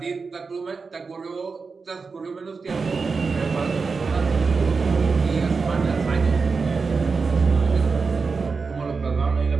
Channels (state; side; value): quieter; left; 4.7 dB